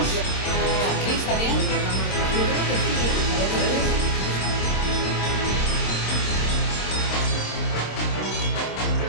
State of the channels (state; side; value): late; right; 26 ms